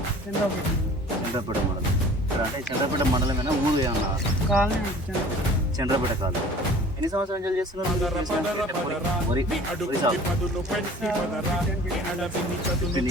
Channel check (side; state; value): both; normal; correlation 0.47